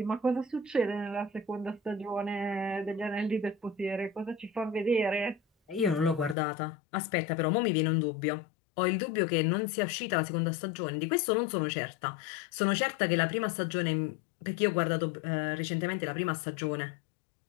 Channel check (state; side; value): drops out; right; at 6.4 s